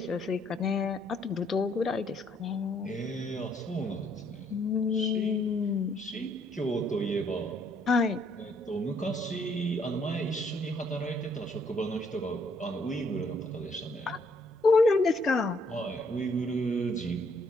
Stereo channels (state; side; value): normal; both; correlation 0.68